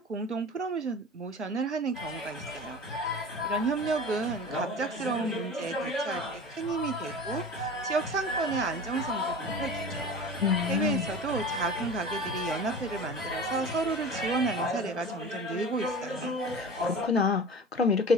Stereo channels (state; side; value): normal; both; correlation 0.36